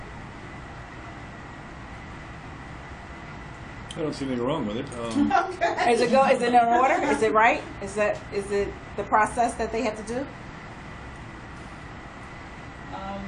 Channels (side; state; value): both; identical; correlation 1.00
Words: I don't see anything wrong with it. Okay. Is it in order? Is it right? Is it the process that they have to do?